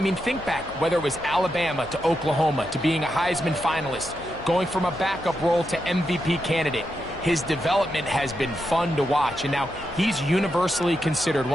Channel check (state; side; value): noise; left; hum, 19 dB below the sound